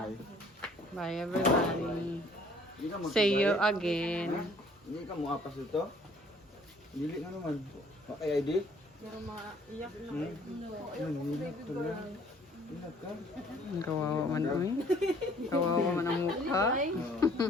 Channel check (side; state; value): both; normal; correlation 0.58